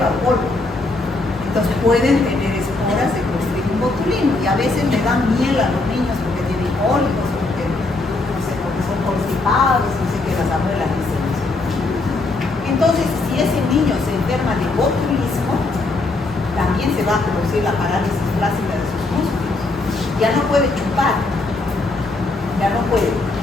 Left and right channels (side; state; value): right; quieter; 3.2 dB